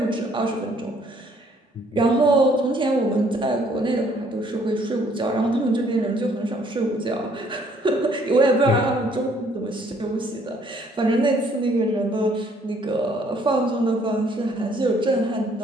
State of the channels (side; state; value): both; normal; correlation 0.63